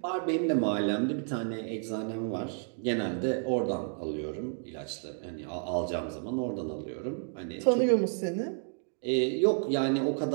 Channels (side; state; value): left; silent; 57 dB below the other